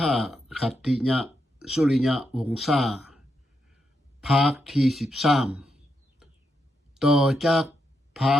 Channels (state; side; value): normal; both; correlation 0.82